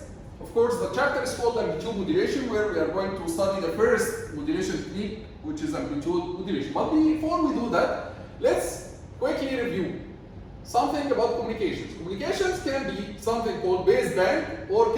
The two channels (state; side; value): identical; both; correlation 1.00